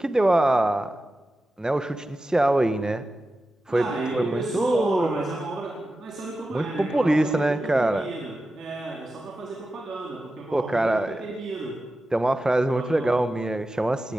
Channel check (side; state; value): both; normal; correlation 0.93